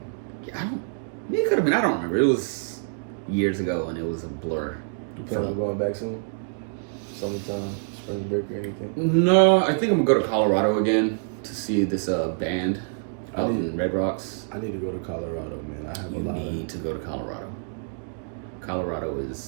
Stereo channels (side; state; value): left; silent; digital silence